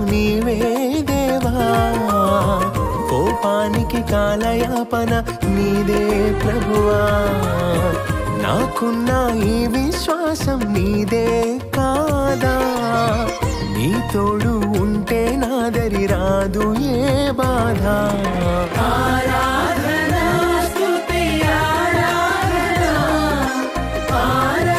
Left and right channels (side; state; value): both; identical; correlation 1.00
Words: నీవే దేవా, కోపానికి కాలయాపన నీదే ప్రభువా. నాకున్న ఈ విశ్వాసం నీదే కాదా, నీ తోడు ఉంటే నాదరి రాదు ఏ బాధ. ఆరాధనా స్తుతి ఆరాధనా,